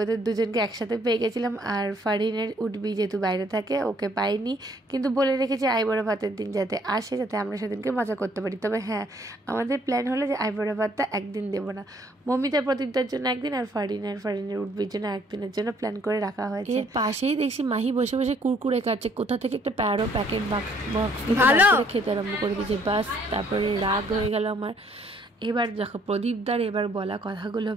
ওদের দুজনকে একসাথে পেয়ে গেছিলাম। আর ফারিনের উঠবি যেহেতু বাইরে থাকে, ওকে পাইনি, কিন্তু বলে রেখেছি আইবুড়ো ভাতের দিন যাতে আসে, যাতে আমরা সেদিনকে মজা করতে পারি। তবে হ্যাঁ, আমাদের প্ল্যান হলো যে আইবুড়ো ভাতটা একদিন দেবো না, মমিতা প্রদীপদার জন্য একদিন, আর ফারিনের উঠবির জন্য একদিনের জন্য প্ল্যান করে রাখা হয়েছে। এর পাশেই দেখছি মাহি বসে বসে কুরকুরে খাচ্ছে, কোথা থেকে একটা প্যারো প্যাকেট বক্স খেতে আরম্ভ করে দিয়েছে। বাস, তারপরে রাগ হয়ে গেল আমার। এবার দেখো প্রদীপদার এবার বলা কথাগুলো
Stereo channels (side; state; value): both; normal; correlation 0.64